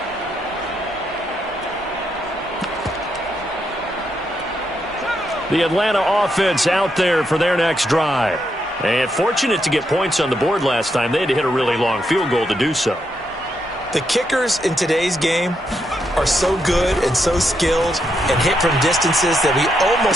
The Atlanta offense out there for their next drive. And fortunate to get points on the board last time. They had to hit a really long field goal to do so. The kickers in today's game are so good and so skilled and hit from distances that we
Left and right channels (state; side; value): normal; both; correlation 0.80